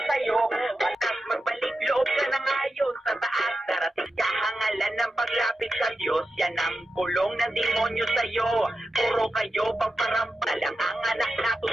sa'yo. Batas magbalik loob ka na ngayon sa taas. Darating kahangalan ng paglapit sa Diyos. Yan ang kulong ng demonyo sa'yo. Puro kayo pagparampa lang ang anak na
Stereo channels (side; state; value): both; normal; correlation 0.90